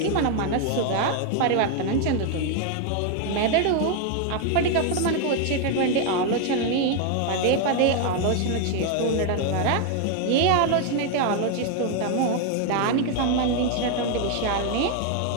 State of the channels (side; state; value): both; different; correlation 0.01